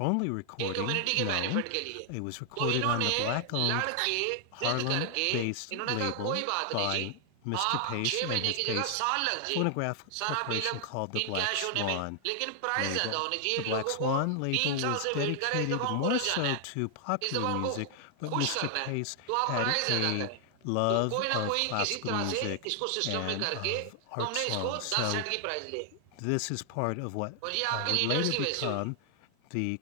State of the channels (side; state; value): both; different; correlation 0.00